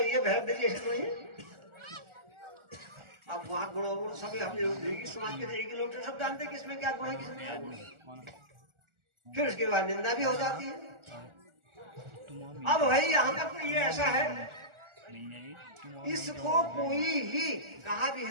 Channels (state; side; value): late; left; 1.4 ms